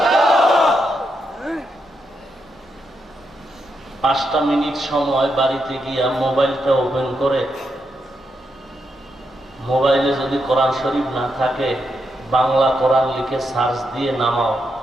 5টা মিনিট সময় বাড়িতে গিয়া মোবাইলটা ওপেন করে, মোবাইলে যদি কোরআন শরীফ না থাকে, বাংলা কোরআন লিখে সার্চ দিয়ে নামাও,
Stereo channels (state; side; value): normal; both; correlation 0.82